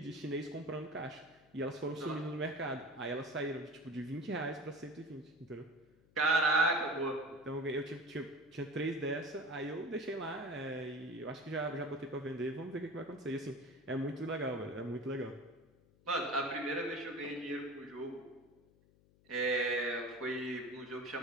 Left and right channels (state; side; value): noise; left; hum, 29 dB below the sound